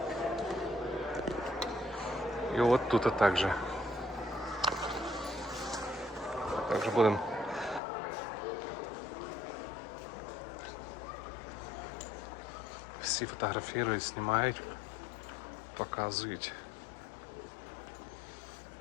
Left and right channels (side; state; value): right; drops out; at 7.8 s